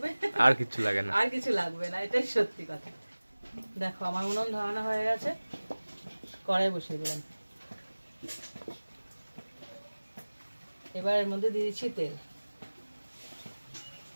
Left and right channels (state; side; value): inverted; both; correlation -1.00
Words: আর কিছু লাগে না, আর কিছু লাগবে না, এটাই সত্যি কথা। দেখো আমার উনুন ধরানো হয়ে গেছে, কড়াই বসিয়ে দিলাম। এবার এর মধ্যে দিয়ে দিচ্ছি তেল।